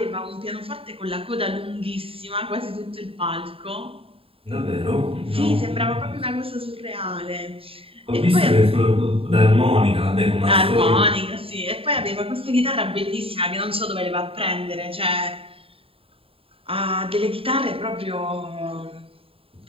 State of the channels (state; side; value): late; left; 0.27 ms